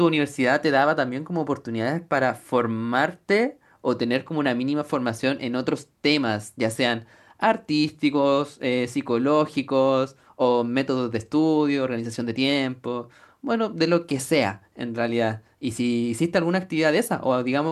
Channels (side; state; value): both; identical; correlation 1.00